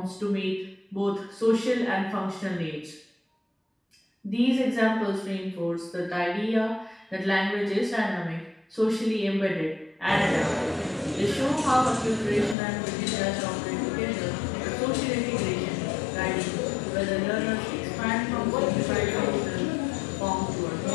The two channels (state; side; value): drops out; right; at 12.6 s